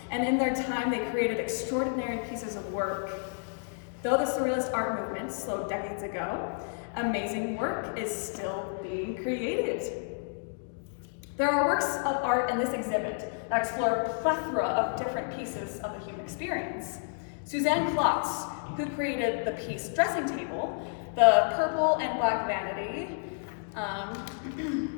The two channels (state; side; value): silent; right; digital silence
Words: and in their time they created extraordinary pieces of work. Though the Surrealist art movement slowed decades ago, amazing work is still being created. There are works of art in this exhibit that explore a plethora of different pieces of the human experience. Suzanne Klotz, who created the piece Dressing Table, the purple and black vanity,